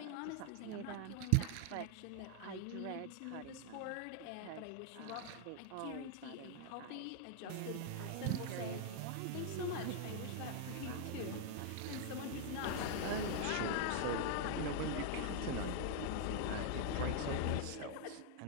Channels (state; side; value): different; both; correlation 0.00